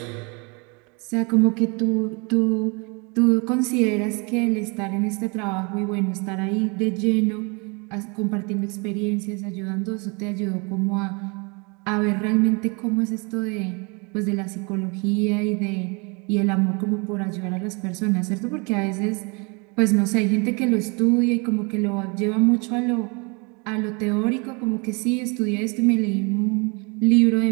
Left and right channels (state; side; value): quieter; left; 31.1 dB